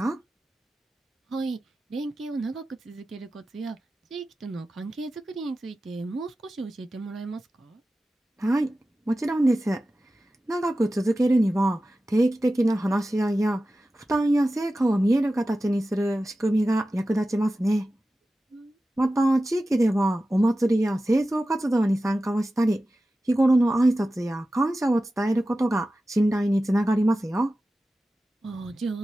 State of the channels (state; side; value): normal; both; correlation 0.94